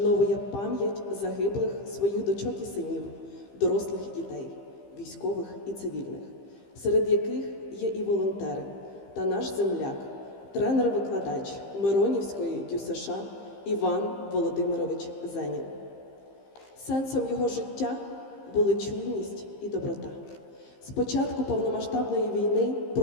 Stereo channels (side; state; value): right; late; 15 ms